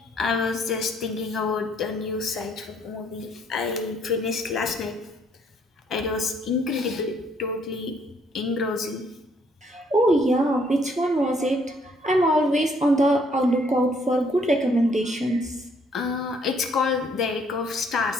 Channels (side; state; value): both; normal; correlation 0.66